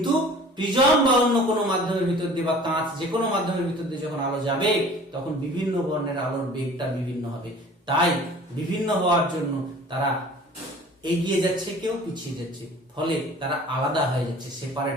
প্রিজম বা অন্য কোনো মাধ্যমের ভিতর দিয়ে বা কাঁচ যে কোনো মাধ্যমের ভিতর দিয়ে যখন আলো যাবে তখন বিভিন্ন বর্ণের আলোর বেগটা বিভিন্ন হবে। তাই বিভিন্ন হওয়ার জন্য তারা এগিয়ে যাচ্ছে, কেউ পিছিয়ে যাচ্ছে, ফলে তারা আলাদা হয়ে যাচ্ছে,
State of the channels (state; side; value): normal; both; correlation 0.46